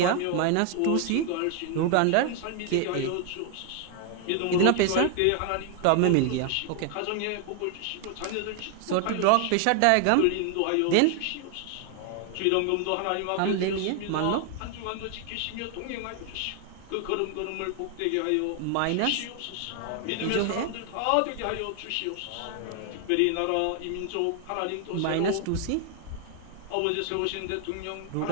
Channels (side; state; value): both; different; correlation 0.00